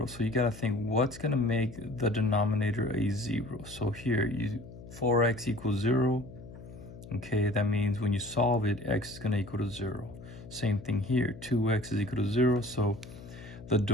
So you got to think, what's going to make the denominator a 0? So here, 4x equals 0. Okay, that means when you solve it, x is going to equal to 0. Same thing here, 2x is equal to 0. So the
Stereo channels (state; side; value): noise; left; hum, 16 dB below the sound